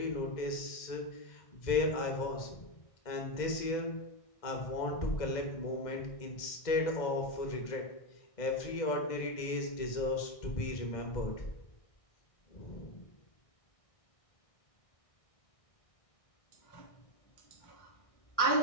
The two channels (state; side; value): late; right; 2.0 ms